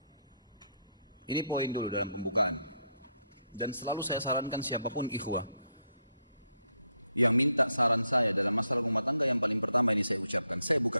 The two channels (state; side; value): inverted; both; correlation -0.77